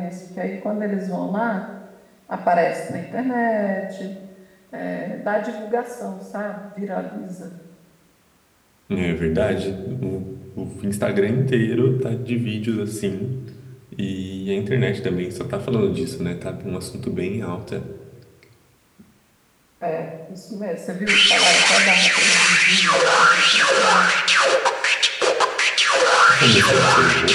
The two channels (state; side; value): identical; both; correlation 1.00